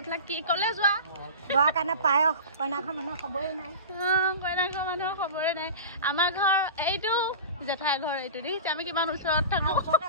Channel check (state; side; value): inverted; both; correlation -0.33